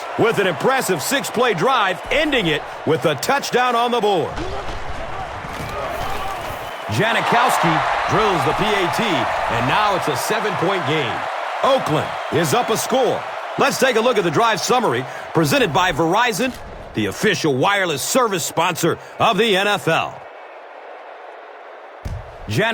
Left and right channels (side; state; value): both; identical; correlation 1.00